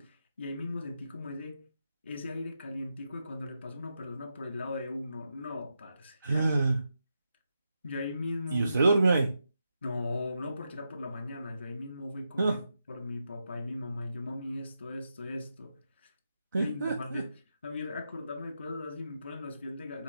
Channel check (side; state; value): both; inverted; correlation -0.86